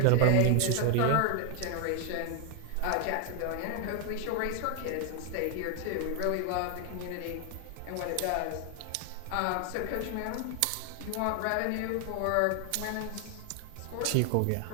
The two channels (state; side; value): different; both; correlation 0.00